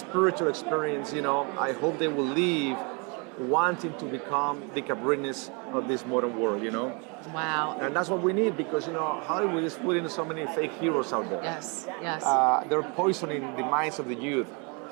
experience, I hope they will leave wanting to become the Cabrinis of this modern world, Wow. And that's what we need, because, Hollywood is putting so many fake heroes out there. Yes. They're poisoning the minds of the youth.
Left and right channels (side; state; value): left; quieter; 32.8 dB